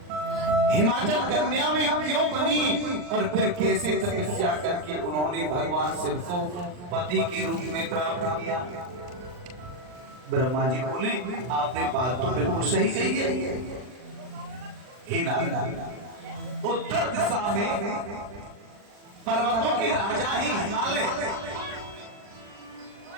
हिमाचल कन्या में क्यों बनी और फिर कैसे तपस्या करके उन्होंने भगवान शिव को पति के रूप में प्राप्त किया? ब्रह्मा जी बोले आपने बात तो बिल्कुल सही कही है। हे नारद, उत्तर दिशा में पर्वतों के राजा ही हिमालय,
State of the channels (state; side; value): late; left; 39 ms